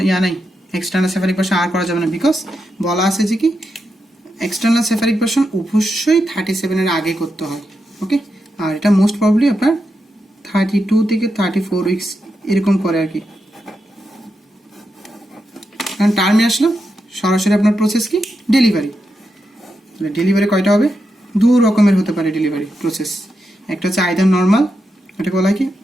নাই, এক্সটার্নাল সেফালিক ভার্সন আর করা যাবে না, বিকজ বলা আছে যে কি এক্সটার্নাল সেফালিক ভার্সন অবশ্যই 37 এর আগে করতে হয়। ওকে, আর এটা মোস্ট প্রবাবলি আপনার 32 থেকে 34 উইকস এরকম করে আর কি। কারণ টার্মে আসলো সরাসরি আপনার প্রসেস কি ডেলিভারি। ডেলিভারি কয়টা হবে, 2 রকমের হতে পারে ডেলিভারি প্রসেস। একটা হচ্ছে আইদার নর্মাল, এটাকে বলা হয় কি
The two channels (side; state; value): both; normal; correlation 0.86